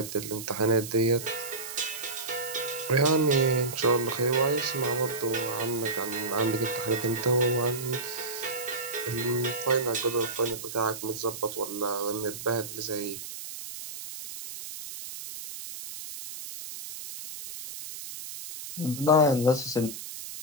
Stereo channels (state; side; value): noise; right; hiss, 10 dB below the sound